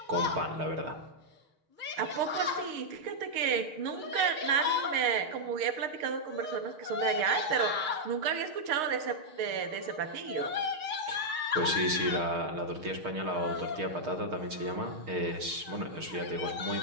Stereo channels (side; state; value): left; late; 6.5 ms